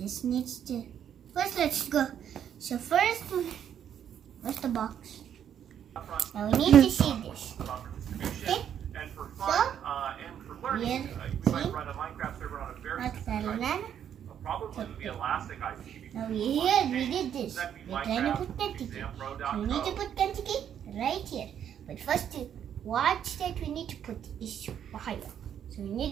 needs to... First, let's go. So first, where's the box? Now we need to see this. Okay? So, here, see? North Carolina. Now here, we did this. We're trying to put Kentucky. So we need to put Kentucky right here. But first, what state we need to put is Ohio. So we need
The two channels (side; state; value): left; quieter; 9.3 dB